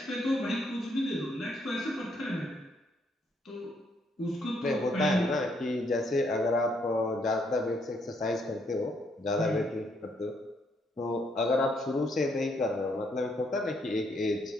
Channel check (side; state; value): both; normal; correlation 0.72